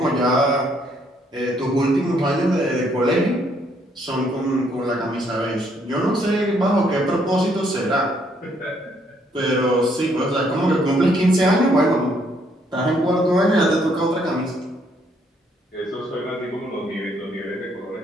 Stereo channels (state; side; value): normal; both; correlation 0.69